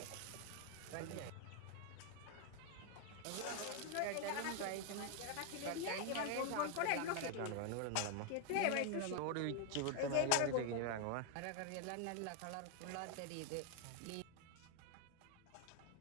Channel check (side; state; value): both; different; correlation 0.00